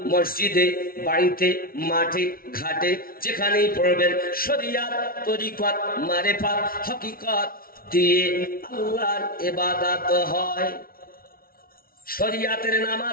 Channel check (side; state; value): right; late; 0.43 ms